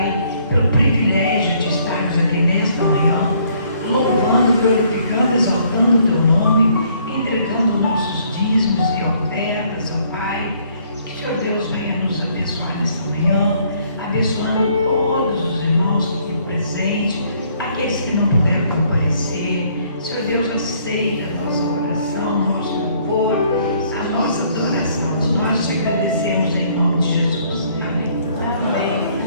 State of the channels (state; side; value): inverted; both; correlation -0.64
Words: pelo privilégio de estarmos aqui nesta manhã, louvando, glorificando, exaltando o teu nome, entregando nossos dízimos e ofertas, ó Pai. Que, Senhor Deus, venha nos abençoar nesta manhã, abençoando todos os irmãos aqui presentes, aqueles que não puderam comparecer. Senhor Deus, aceita a nossa oração.